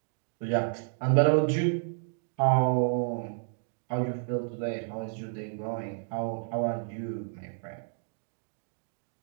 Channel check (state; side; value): silent; left; digital silence